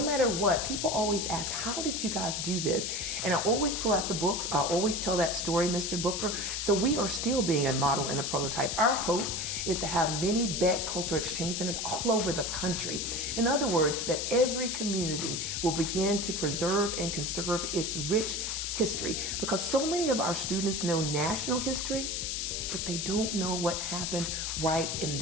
matter what, people always ask, how did you guys do this? And I always pull out the books. I always tell that story, Mr. Booker. So we are still being a model and a prototype. Our hope is to have many Beck Cultural Exchange Centers all over the country. In other words, that every community will begin to preserve and conserve its rich history, because so many of our students know national history, but they don't know what happened right in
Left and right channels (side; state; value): left; noise; hiss, 2 dB below the sound